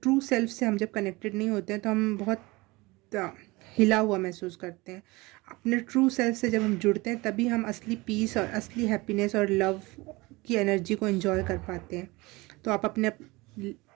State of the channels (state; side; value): quieter; left; 23.0 dB